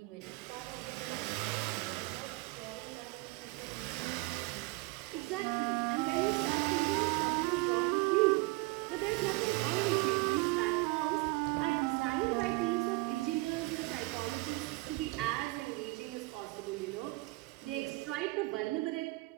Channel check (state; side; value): quieter; left; 23.1 dB